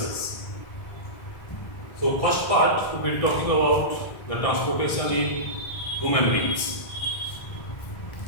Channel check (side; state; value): right; late; 1.6 ms